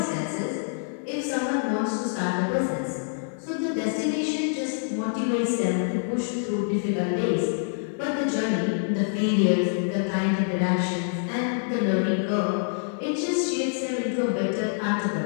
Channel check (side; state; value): right; silent; digital silence